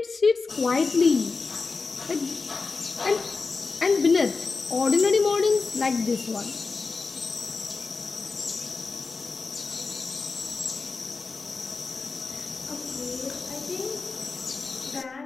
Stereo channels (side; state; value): right; quieter; 4.2 dB